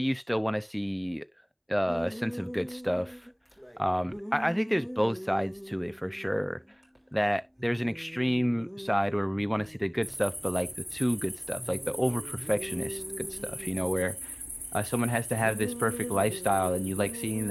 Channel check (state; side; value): identical; both; correlation 1.00